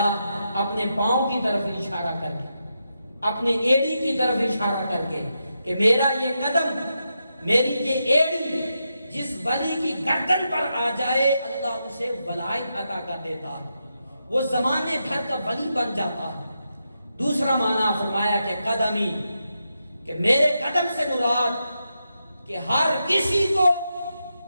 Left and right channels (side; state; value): both; inverted; correlation -0.85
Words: اپنے پاؤں کی طرف اشارہ کر کے، اپنے ایڑی کی طرف اشارہ کر کے کہ میرا یہ قدم، میری یہ ایڑی جس ولی کی گردن پر آ جائے اللہ اسے ولایت عطا کر دیتا ہے، وہ زمانے بھر کا ولی بن جاتا ہے۔ دوسرا معنی فرمایا کہ قدمی، کہ میرے قدم سے مراد کہ ہر کسی کو